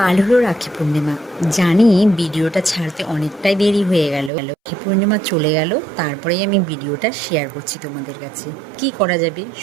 হলো রাখি পূর্ণিমা। জানি ভিডিওটা ছাড়তে অনেকটাই দেরি হয়ে গেল। রাখি পূর্ণিমা চলে গেল, তারপরেই আমি ভিডিওটা শেয়ার করছি তোমাদের কাছে। কি করা যাবে,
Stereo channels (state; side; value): drops out; left; at 4.3 s